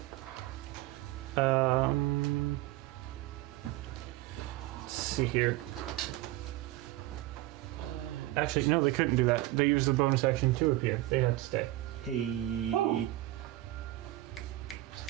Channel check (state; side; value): quieter; left; 16.8 dB